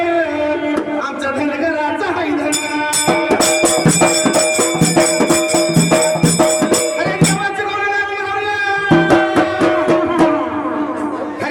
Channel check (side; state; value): both; identical; correlation 1.00